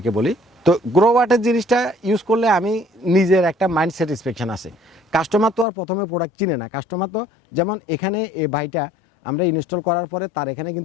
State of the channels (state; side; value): drops out; right; at 5.7 s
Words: বলি, তো গ্রোওয়াটের জিনিসটা ইউজ করলে আমি নিজের একটা মাইন্ড স্যাটিসফ্যাকশন আছে। কাস্টমার তো আর প্রথমে প্রোডাক্ট চিনে না, কাস্টমার তো যেমন এখানে এই ভাইটা আমরা ইনস্টল করার পরে তার এখানে